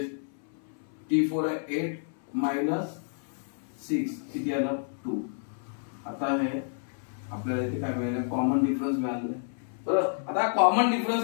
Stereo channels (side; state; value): right; silent; 58 dB below the other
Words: T4 आहे 8 मायनस 6 किती आलं 2. आता हे आपल्याला इथे काय मिळालं कॉमन डिफरन्स मिळालेला आहे. बरोबर. आता कॉमन डिफरन्स